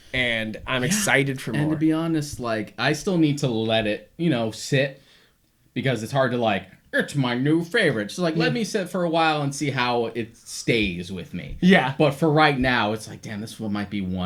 and I'm excited for more. And to be honest, like, I still need to let it, you know, sit, because it's hard to like, it's my new favorite. So like, let me sit for a while and see how it stays with me. Yeah. But for right now, it's like, damn, this one might be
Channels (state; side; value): identical; both; correlation 1.00